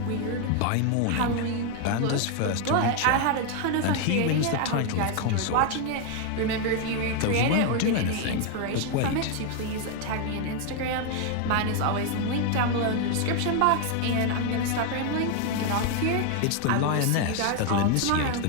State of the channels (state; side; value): different; both; correlation 0.01